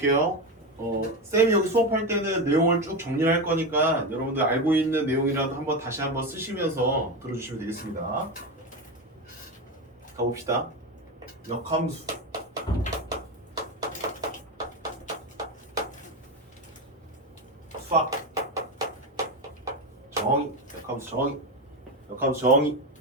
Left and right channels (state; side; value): normal; both; correlation 0.16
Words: 쌤이 여기 수업할 때는 내용을 쭉 정리할 거니까 여러분들 알고 있는 내용이라도 한번 다시 한번 쓰시면서 들어주시면 되겠습니다. 가봅시다. 역함수. 수학 정의, 역함수 정의, 역함수 정의,